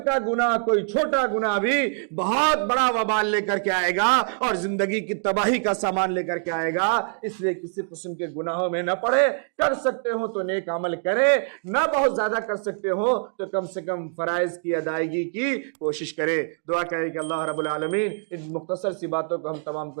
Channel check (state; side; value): silent; left; 62 dB below the other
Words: گناہ، کوئی چھوٹا گناہ بھی بہت بڑا وبال لے کر کے آئے گا اور زندگی کی تباہی کا سامان لے کر کے آئے گا۔ اس لیے کسی قسم کے گناہوں میں نہ پڑے، کر سکتے ہو تو نیک عمل کرے، نہ بہت زیادہ کر سکتے ہو تو کم سے کم فرائض کی ادائیگی کی کوشش کرے۔ دعا کرے کہ اللہ رب العالمین ان مختصر سی باتوں کو ہم تمام